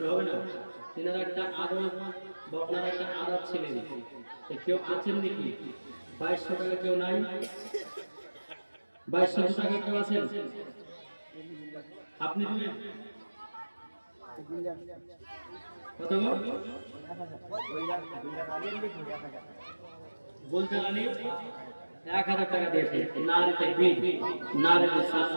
হবে না তিনার একটা আদর বকনার একটা আদর ছিলেন কেউ আছেন নাকি 2200 টাকা কেউ নাই 2200 টাকা কেউ আছেন? আপনি দিবেন কত গো? বলতে আনি 1000 টাকা দিয়েছে। নারে তাকবীর, নারে রিসালাত।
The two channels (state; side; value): inverted; both; correlation -1.00